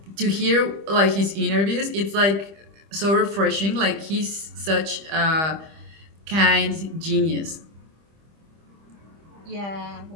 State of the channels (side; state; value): left; late; 25 ms